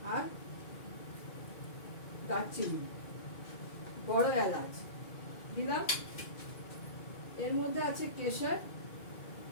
আর দারচিনি, বড় এলাচ দিলাম। এর মধ্যে আছে কেশর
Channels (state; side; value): late; right; 2.3 ms